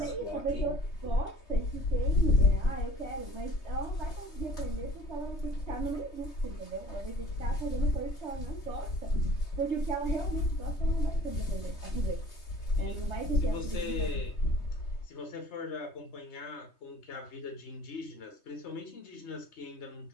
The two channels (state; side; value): late; right; 3.2 ms